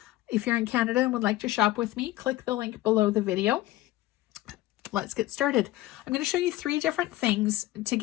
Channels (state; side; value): quieter; right; 16.5 dB